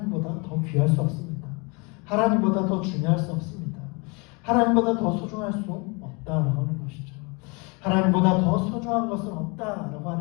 더 귀할 수 없습니다. 하나님보다 더 중요할 수 없습니다. 하나님보다 더 소중할 수 없다라고 하는 것이죠. 하나님보다 더 소중한 것은 없다라고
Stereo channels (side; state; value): right; quieter; 30.2 dB